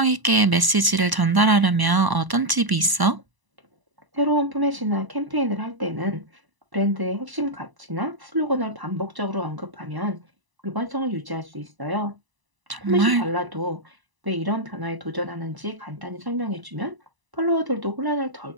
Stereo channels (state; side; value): late; left; 1.0 ms